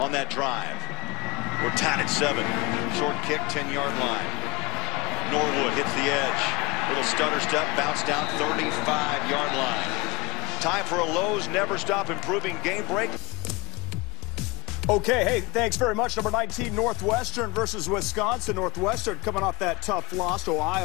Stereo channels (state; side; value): quieter; right; 24.8 dB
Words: that drive. We're tied at 7. Short kick, 10-yard line. Norwood hits the edge. Little stutter step, bounce down, 35-yard line. Time for a Lowe's Never Stop Improving game break. Okay, hey, thanks very much. Number 19, Northwestern versus Wisconsin. Northwestern coming off that tough loss to